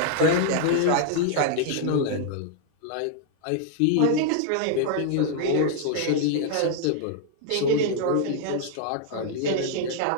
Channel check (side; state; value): both; different; correlation 0.00